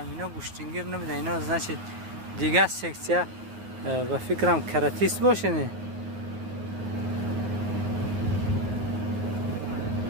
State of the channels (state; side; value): late; left; 9.4 ms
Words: اینا گوشتینگیر نمیده، اینا از نشید دیگه سکسیه و فکرم کراتیست باشه نه.